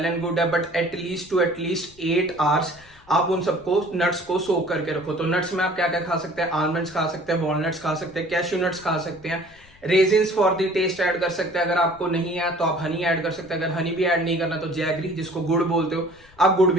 एंड गुड है, बट एटलीस्ट 8 आवर्स आप उन सबको नट्स को सोक करके रखो। तो नट्स में आप क्या क्या खा सकते हैं, आलमंड्स खा सकते हैं, वॉलनट्स खा सकते हैं, कैश्यू नट्स खा सकते हैं, raisins for the taste add कर सकते हैं। अगर आपको नहीं है तो आप हनी ऐड कर सकते हैं। अगर हनी भी ऐड नहीं करना तो जैगरी, जिसको गुड़ बोलते हो, आप गुड़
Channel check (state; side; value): noise; left; rumble, 27 dB below the sound